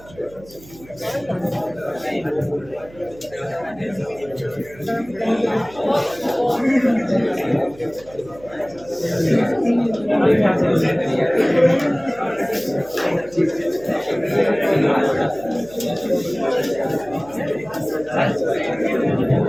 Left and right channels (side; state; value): right; noise; hum, 21 dB below the sound